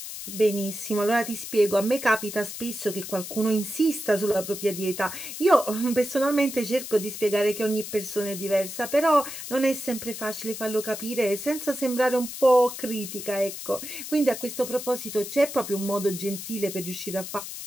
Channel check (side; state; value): left; noise; hiss, 9 dB below the sound